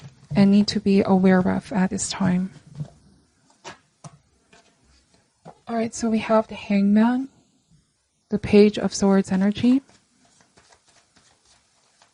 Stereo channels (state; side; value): identical; both; correlation 1.00